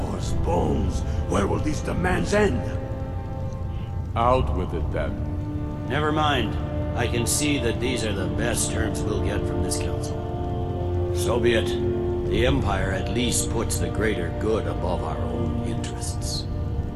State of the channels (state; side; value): identical; both; correlation 1.00